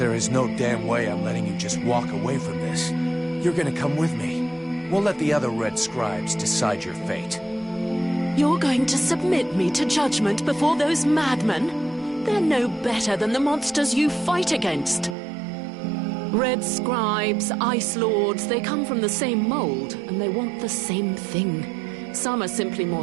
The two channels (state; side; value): drops out; left; at 15.2 s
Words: is no damn way I'm letting you just walk away from this, you're gonna come with me. We'll let the other Red Scribes decide your fate. You're going to submit me to judgment before those madmen? They're no better than the monsters you fight against. Red Scribes, Ice Lords, they come from the same mold, and they want the same thing. Some are simply